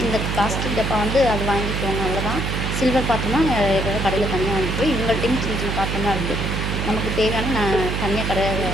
இந்த பிளாஸ்டிக் டப்பா வந்து அது வாங்கிக்குவோங்க, அவ்வளோதான். சில்வர் பாத்திரம்னா எதாவது கடையில் தனியாக வாங்கிக்குவோம். இவங்கள்ட்டையும் சின்ன சின்ன பாத்திரம்லாம் இருக்குது. நமக்கு தேவையான நான் தனியாக கடையில்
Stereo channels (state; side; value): noise; right; hum, 1 dB below the sound